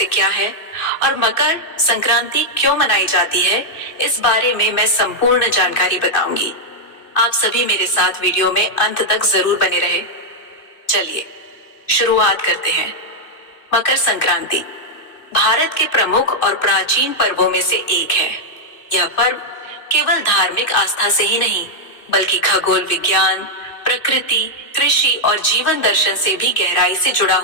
क्या है और मकर संक्रांति क्यों मनाई जाती है, इस बारे में मैं संपूर्ण जानकारी बताऊंगी। आप सभी मेरे साथ वीडियो में अंत तक जरूर बने रहे। चलिए शुरुआत करते हैं। मकर संक्रांति भारत के प्रमुख और प्राचीन पर्वों में से एक है। यह पर्व केवल धार्मिक आस्था से ही नहीं, बल्कि खगोल विज्ञान, प्रकृति, कृषि और जीवन दर्शन से भी गहराई से जुड़ा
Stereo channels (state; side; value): late; right; 2.6 ms